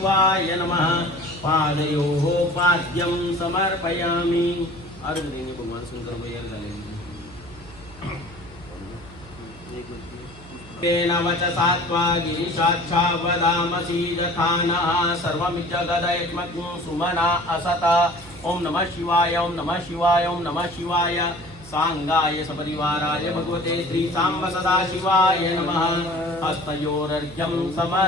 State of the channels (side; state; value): right; noise; hum, 20 dB below the sound